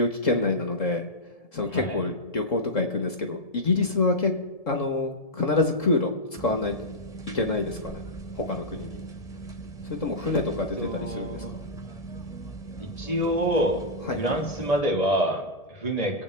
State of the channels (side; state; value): right; late; 1.7 ms